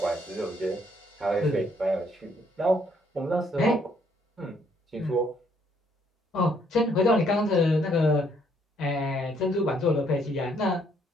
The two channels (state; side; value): normal; both; correlation 0.68